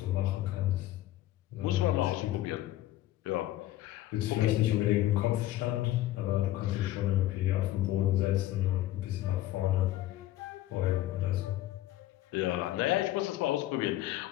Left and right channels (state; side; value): quieter; right; 14.9 dB